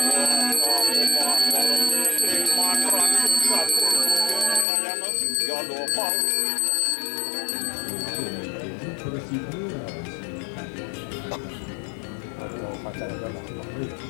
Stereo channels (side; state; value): right; drops out; at 4.7 s